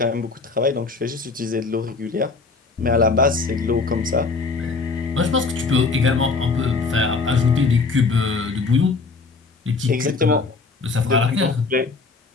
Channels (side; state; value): right; quieter; 4.2 dB